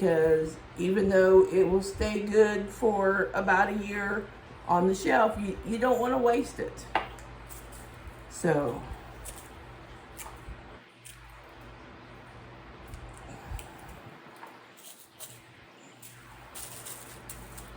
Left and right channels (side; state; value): both; identical; correlation 1.00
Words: even though it will stay good for about a year on the shelf, you don't want to waste it. So